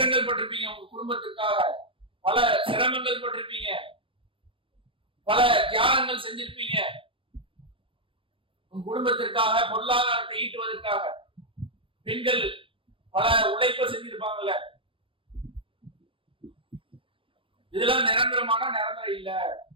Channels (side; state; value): left; late; 0.25 ms